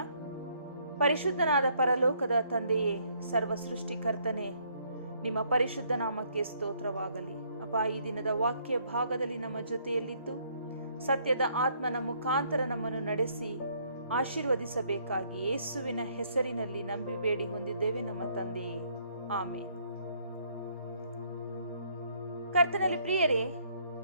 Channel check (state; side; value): inverted; both; correlation -0.67